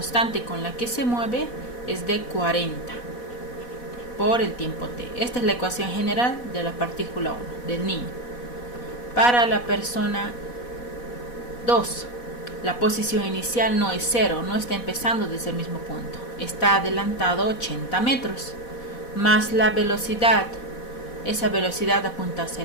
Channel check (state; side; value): late; right; 4.1 ms